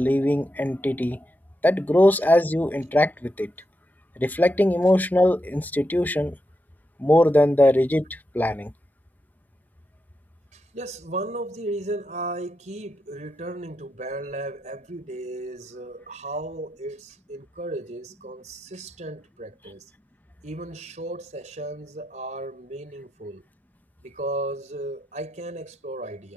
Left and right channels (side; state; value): both; normal; correlation 0.86